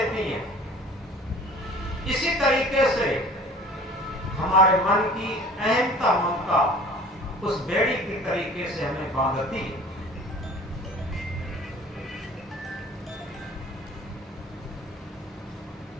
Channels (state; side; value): normal; both; correlation 0.46